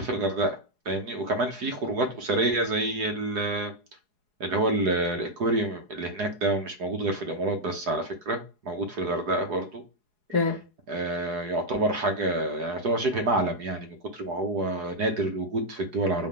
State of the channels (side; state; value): left; late; 4.8 ms